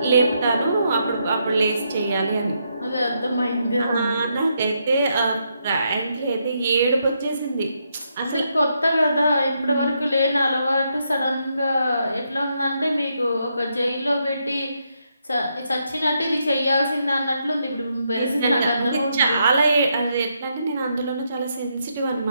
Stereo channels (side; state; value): both; inverted; correlation -0.79